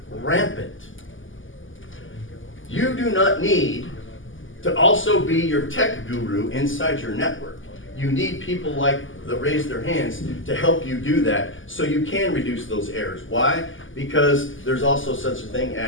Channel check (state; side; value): late; right; 0.58 ms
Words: rampant. You do not need to also be your tech guru inside your network. You need people like that raise their hands to help you do that so you can reduce those errors. Why? Because there's also such a thing